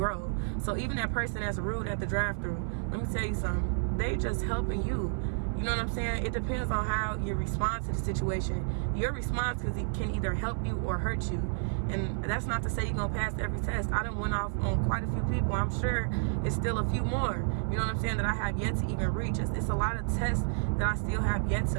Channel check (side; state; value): left; silent; 57 dB below the other